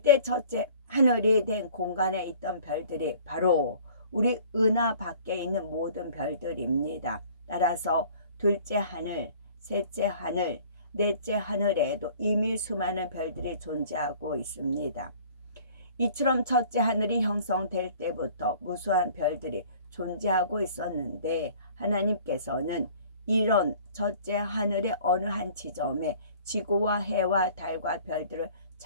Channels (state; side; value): inverted; both; correlation -0.50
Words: 첫째 하늘이 된 공간에 있던 별들이 바로 우리 은하 밖에 있는 모든 별들입니다. 따라서 둘째 하늘, 셋째 하늘, 넷째 하늘에도 이미 수많은 별들이 존재하고 있습니다. 이처럼 첫째 하늘이 형성될 때부터 무수한 별들이 존재하고 있었는데 하나님께서는 이런 첫째 하늘의 어느 한 지점에 지구와 해와 달과 별들을